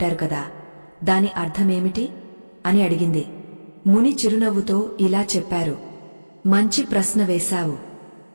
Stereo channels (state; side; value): inverted; both; correlation -1.00